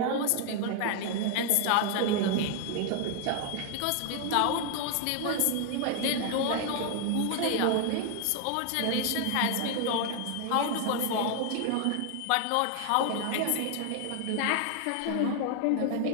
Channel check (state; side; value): different; both; correlation 0.00